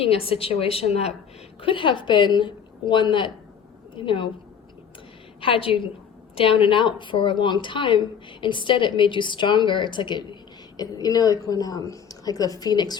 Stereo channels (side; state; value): right; quieter; 7.6 dB